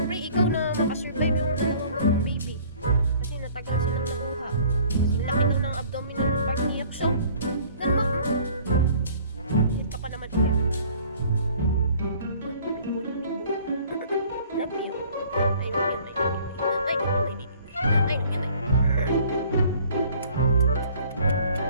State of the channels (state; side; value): inverted; both; correlation -0.53